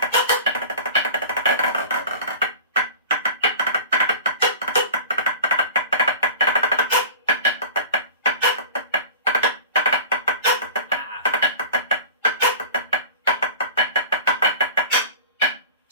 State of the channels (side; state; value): both; inverted; correlation -0.37